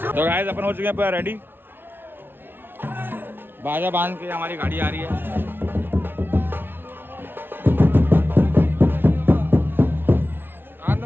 तो गाइस अपन हो चुके हैं पूरा रेडी। बाजा बांध के हमारी गाड़ी आ रही है।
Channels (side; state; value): left; late; 0.10 ms